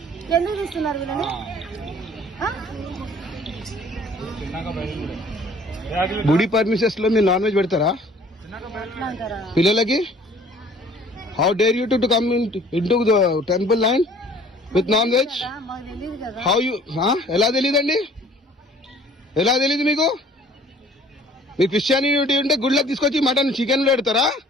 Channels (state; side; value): normal; both; correlation 0.53